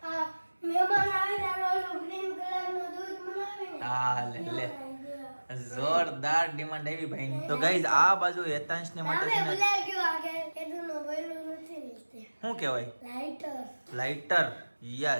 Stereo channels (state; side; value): inverted; both; correlation -1.00